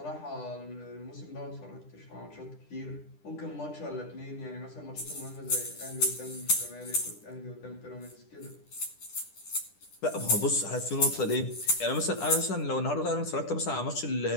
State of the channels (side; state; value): right; late; 10 ms